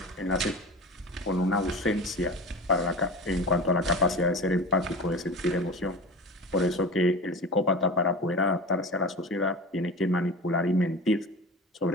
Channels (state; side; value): normal; both; correlation 0.33